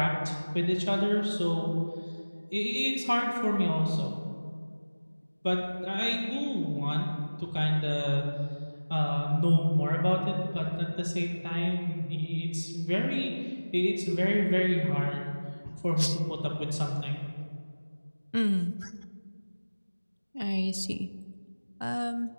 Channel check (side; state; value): both; inverted; correlation -1.00